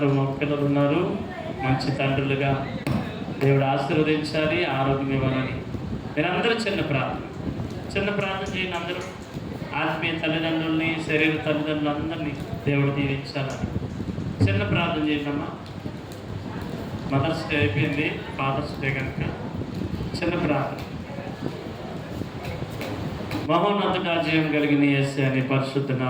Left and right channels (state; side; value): identical; both; correlation 1.00